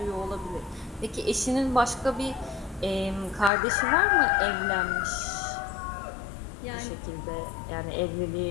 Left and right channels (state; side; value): drops out; right; at 3.5 s